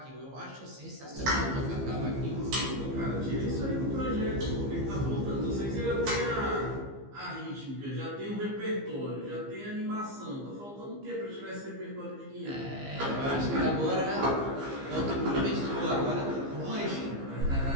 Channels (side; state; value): left; late; 15 ms